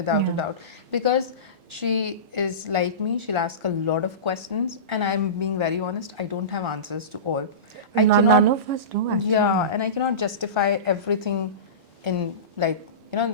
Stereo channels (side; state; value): left; late; 4.2 ms